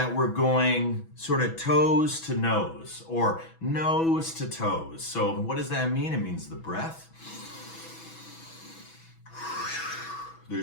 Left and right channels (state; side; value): late; right; 6.1 ms